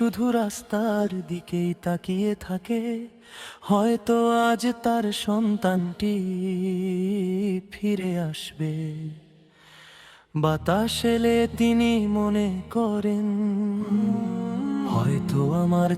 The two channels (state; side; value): identical; both; correlation 1.00